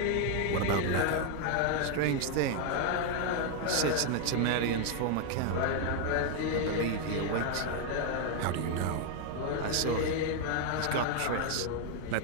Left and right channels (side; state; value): both; different; correlation 0.00